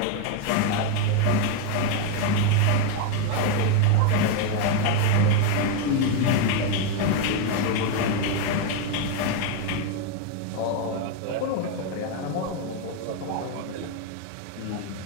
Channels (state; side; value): different; both; correlation 0.02